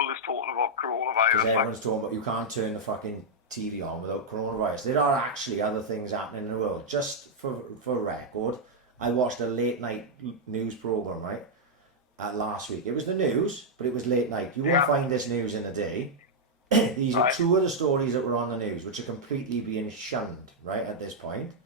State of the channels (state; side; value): normal; both; correlation -0.04